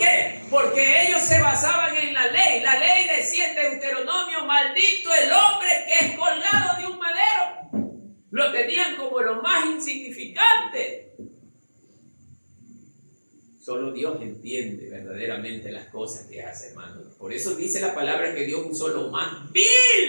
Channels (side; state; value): both; inverted; correlation -1.00